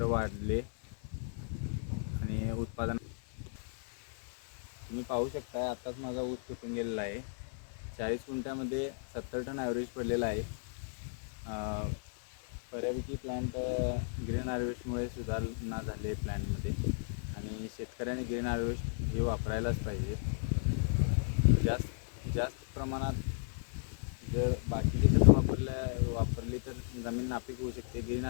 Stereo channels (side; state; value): right; silent; 55 dB below the other